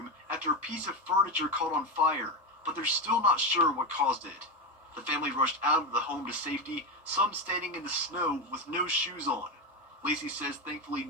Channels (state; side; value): normal; both; correlation 0.15